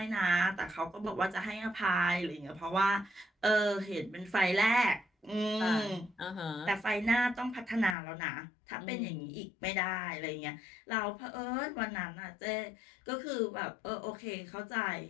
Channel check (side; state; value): right; drops out; at 8.0 s